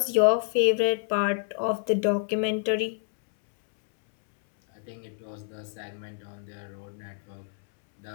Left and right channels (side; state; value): right; silent; 60 dB below the other